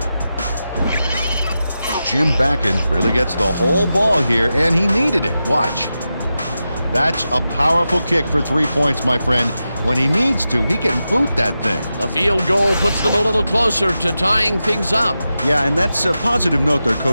Jim Vacan really gets the whole ball here, and he needed it. Watch. That's a powerful kick for 3 points, my friend. When he needs to, he can boot that thing. The field goal puts them a little closer to tying things up. Yeah, and that's a positive note their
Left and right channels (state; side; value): inverted; both; correlation -0.91